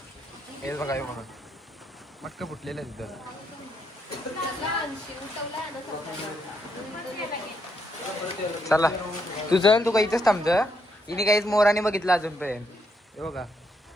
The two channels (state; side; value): normal; both; correlation 0.77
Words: हे बघा हे बघा मटका फुटलेलं आहे तिथं. चला तू चल, तू काही इथंच थांबत. हिने काहीच मोराने बघितलं अजूनपर्यंत. हे बघा